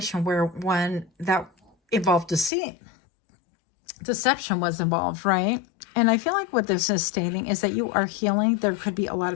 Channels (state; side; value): drops out; right; at 2.5 s